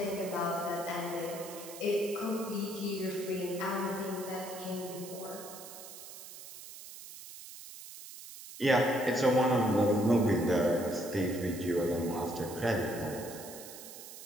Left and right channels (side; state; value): right; noise; hiss, 14 dB below the sound